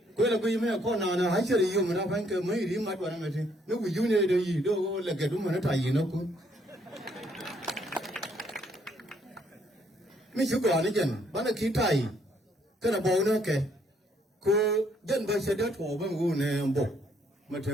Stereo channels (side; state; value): both; normal; correlation 0.68